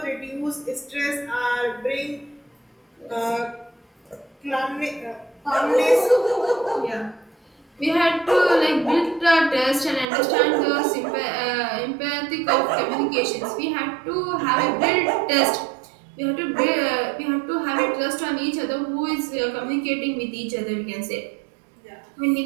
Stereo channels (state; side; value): drops out; left; at 10.1 s